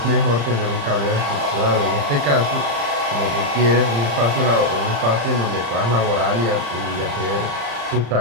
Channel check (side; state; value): left; late; 35 ms